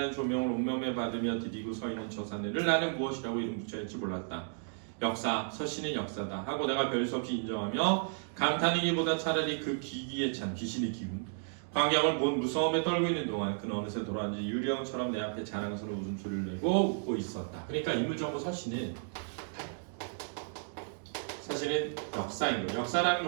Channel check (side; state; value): left; silent; digital silence